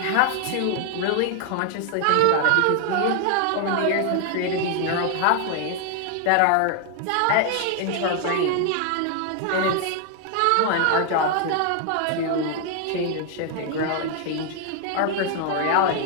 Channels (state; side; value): different; both; correlation 0.00